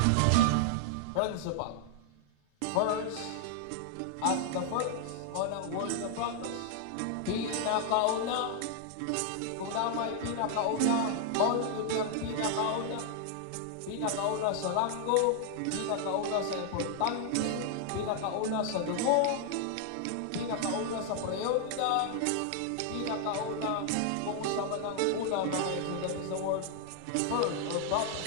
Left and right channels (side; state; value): both; different; correlation 0.00